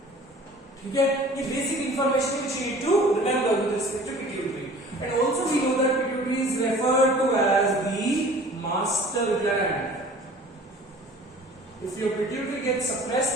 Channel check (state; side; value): normal; both; correlation 0.46